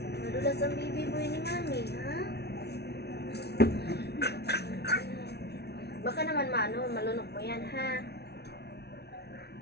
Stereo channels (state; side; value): late; right; 0.48 ms